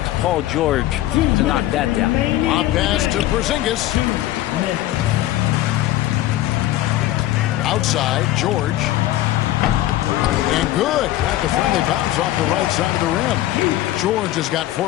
Paul George to knock that down. A pass to Porzingis. Outside, George. And good. Got the friendly bounce off the right side of the rim. George has got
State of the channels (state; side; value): quieter; right; 14.8 dB